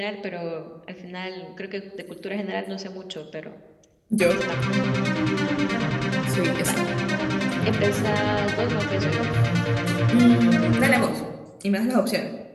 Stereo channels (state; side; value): identical; both; correlation 1.00